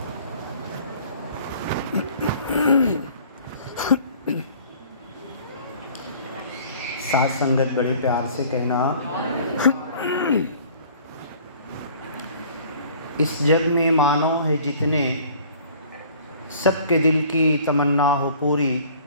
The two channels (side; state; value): both; inverted; correlation -0.51